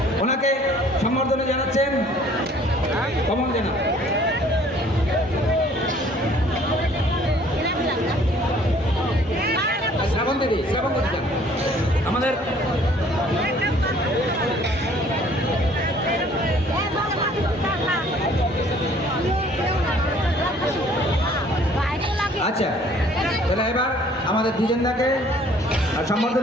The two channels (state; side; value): normal; both; correlation 0.56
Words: ওনাকে সম্বর্ধনা জানাচ্ছেন কমল জানা। শ্রাবণ দিদি আমাদের আচ্ছা, তাহলে এবার আমাদের দ্বিজেন্দাকে